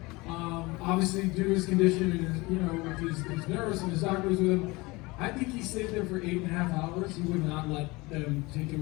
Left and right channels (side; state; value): right; quieter; 23.4 dB